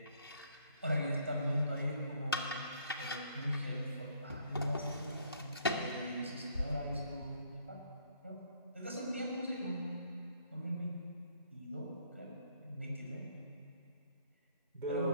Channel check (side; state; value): both; inverted; correlation -0.65